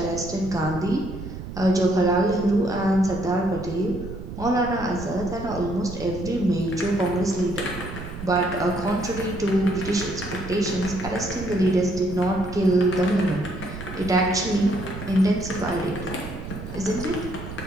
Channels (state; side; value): noise; right; rumble, 10 dB below the sound